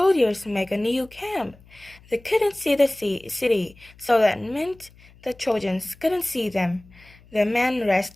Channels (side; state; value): left; noise; hum, 25 dB below the sound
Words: made a new camp. They couldn't see the city, so that meant the Trojans couldn't see them. The men